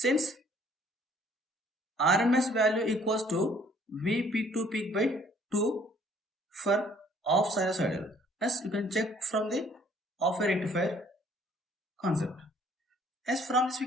RMS value equals to V peak to peak by 2 for off sinusoidal. Yes, you can check from the off a rectifier concept. As from this we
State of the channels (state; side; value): normal; both; correlation 0.60